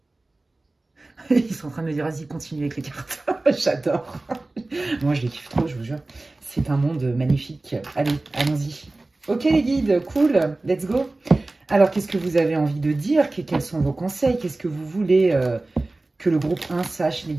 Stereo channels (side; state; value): left; quieter; 3.0 dB